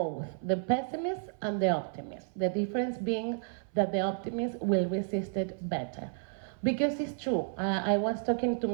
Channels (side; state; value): left; silent; 57 dB below the other